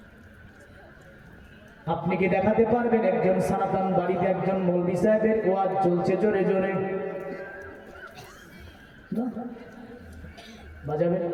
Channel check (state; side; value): identical; both; correlation 1.00